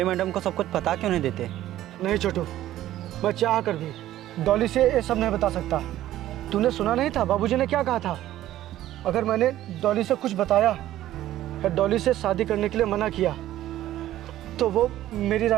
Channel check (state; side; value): quieter; left; 13.7 dB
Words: मैडम को सब कुछ बता क्यों नहीं देते? नहीं छोटू, मैं चाह कर भी डॉली से ये सब नहीं बता सकता। तूने सुना नहीं था बाबूजी ने क्या कहा था? अगर मैंने डॉली से कुछ बताया या डॉली से शादी करने के लिए मना किया तो वो मेरी